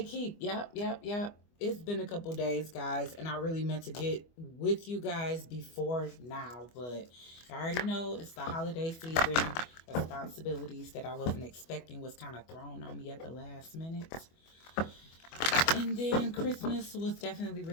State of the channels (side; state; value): right; late; 24 ms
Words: keep. Yep. It's been a couple days, guys, and I really meant to get with you guys before now, but I already know it's the holiday season. Responsibilities that I wasn't expecting was kind of thrown on me at the last minute. And then Christmas was definitely